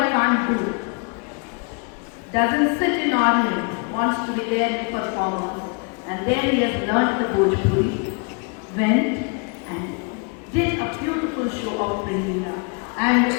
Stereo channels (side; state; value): right; quieter; 35.4 dB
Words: can't do. Doesn't sit in audience, wants to be there in performance. And there he has learned the Bhojpuri, went and did a beautiful show of Bringina. And